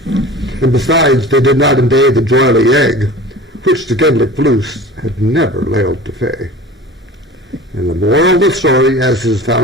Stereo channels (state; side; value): normal; both; correlation 0.38